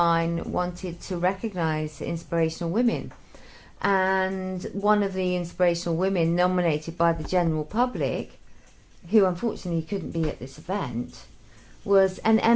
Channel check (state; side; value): identical; both; correlation 1.00